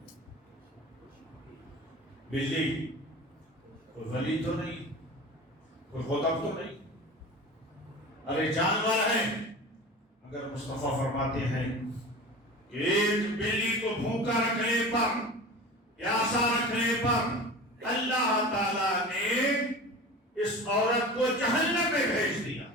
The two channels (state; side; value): normal; both; correlation 0.35